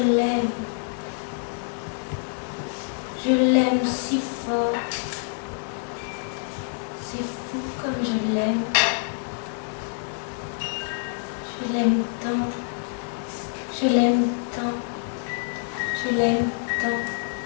l'aime. Je l'aime si fort. C'est fou comme je l'aime. Je l'aime tant. Je l'aime tant. Je l'aime tant.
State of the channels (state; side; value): silent; right; 61 dB below the other